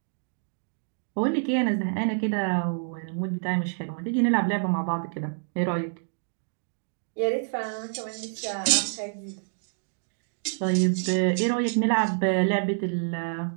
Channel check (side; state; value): left; silent; digital silence